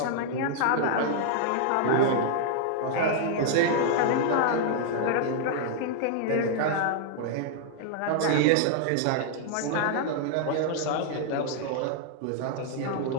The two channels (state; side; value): different; both; correlation -0.01